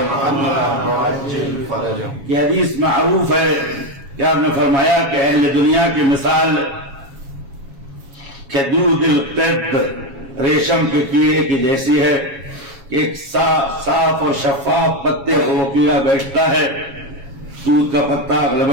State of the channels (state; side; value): late; left; 7.3 ms